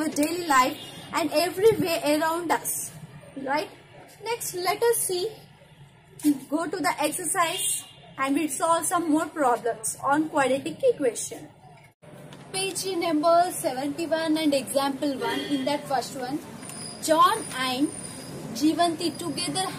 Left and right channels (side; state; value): both; identical; correlation 1.00